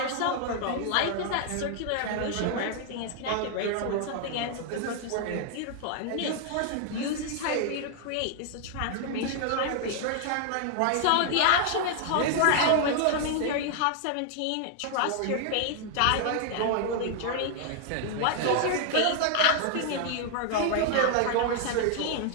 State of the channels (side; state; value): both; different; correlation 0.00